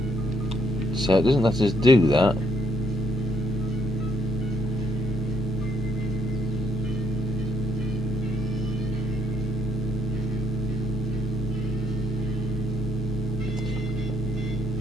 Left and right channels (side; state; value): both; normal; correlation 0.72